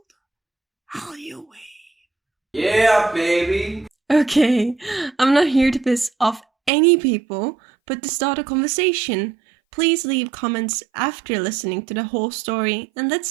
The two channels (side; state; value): left; drops out; at 6.7 s